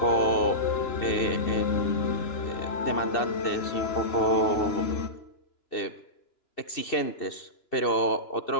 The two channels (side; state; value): right; late; 2.7 ms